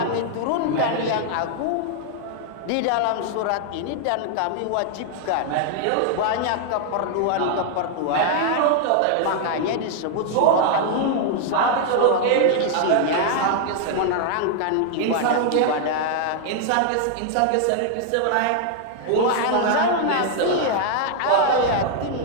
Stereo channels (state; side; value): different; both; correlation 0.00